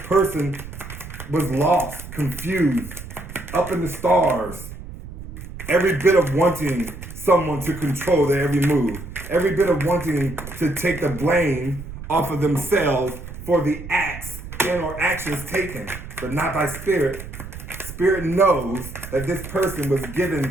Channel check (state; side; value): noise; right; rumble, 12 dB below the sound